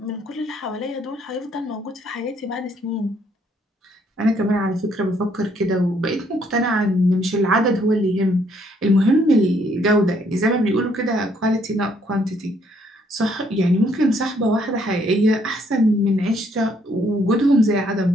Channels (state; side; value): normal; both; correlation 0.68